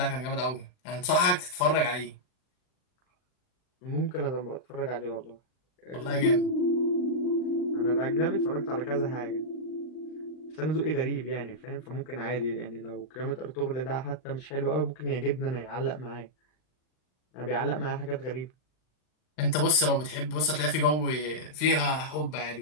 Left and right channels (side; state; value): right; late; 39 ms